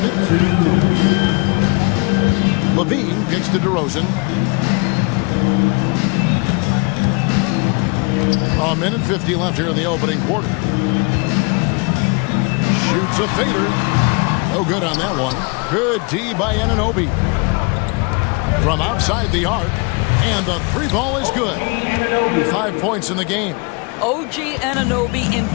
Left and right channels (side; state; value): right; quieter; 31.1 dB